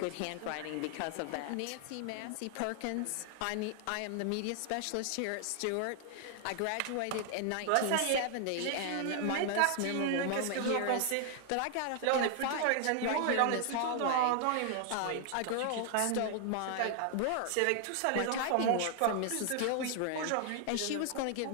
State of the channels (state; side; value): different; both; correlation 0.00